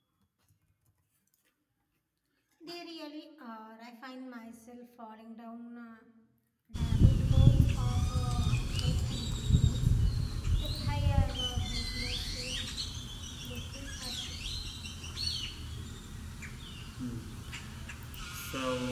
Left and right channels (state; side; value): identical; both; correlation 1.00